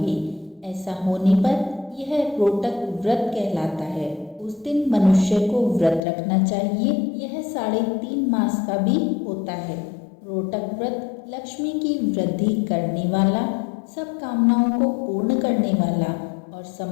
ऐसा होने पर यह रोटक व्रत कहलाता है। उस दिन मनुष्य को व्रत रखना चाहिए। यह 3.5 मास का भी होता है। रोटक व्रत लक्ष्मी की वृद्धि करने वाला, सब कामनाओं को पूर्ण करने वाला और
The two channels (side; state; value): right; drops out; at 6.0 s